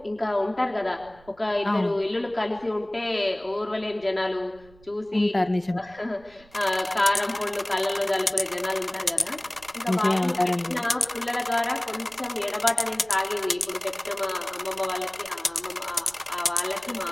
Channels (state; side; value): noise; right; rumble, 26 dB below the sound